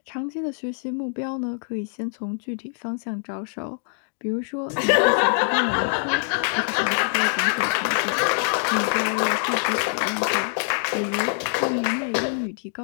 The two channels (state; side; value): silent; right; digital silence